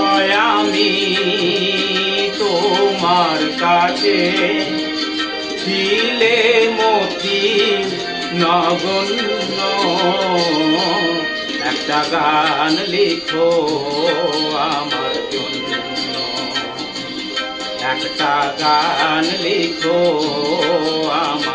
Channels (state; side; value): noise; left; rumble, 29 dB below the sound